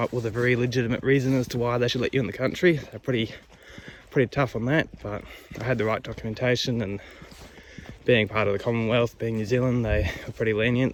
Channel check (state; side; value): identical; both; correlation 1.00